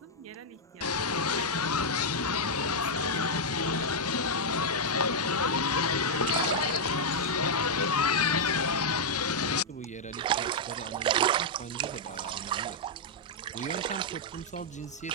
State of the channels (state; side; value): normal; both; correlation -0.03